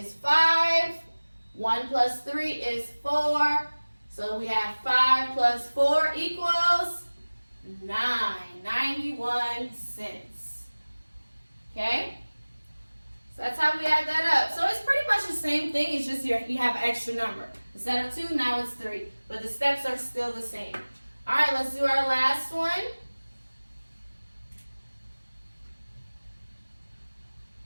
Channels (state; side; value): inverted; both; correlation -1.00